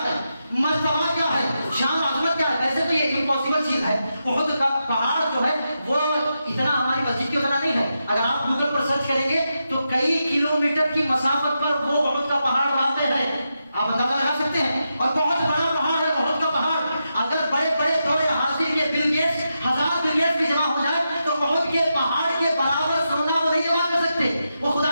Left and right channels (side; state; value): both; inverted; correlation -0.87